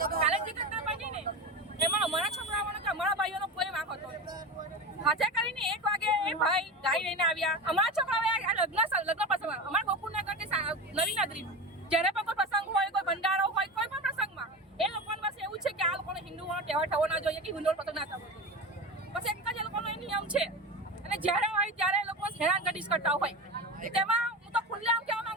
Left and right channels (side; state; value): both; normal; correlation 0.25